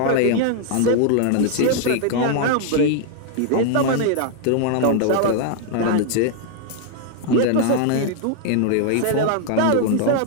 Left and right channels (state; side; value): different; both; correlation 0.00